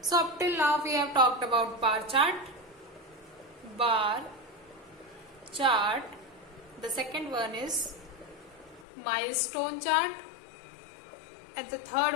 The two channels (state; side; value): drops out; right; at 8.8 s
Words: up till now we have talked about bar chart. The second one is milestone chart, and the